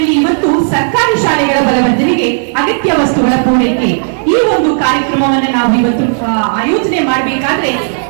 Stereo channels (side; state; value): left; silent; digital silence